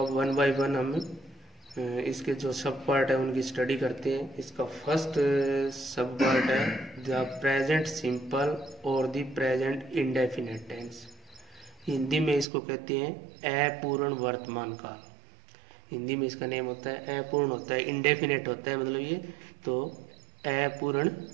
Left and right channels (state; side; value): drops out; left; at 12.5 s